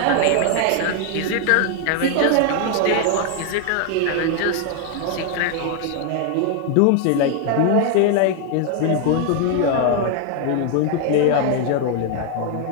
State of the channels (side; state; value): both; different; correlation 0.00